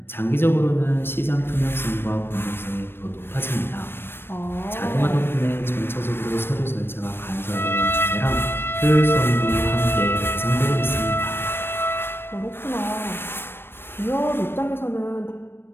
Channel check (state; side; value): late; right; 0.11 ms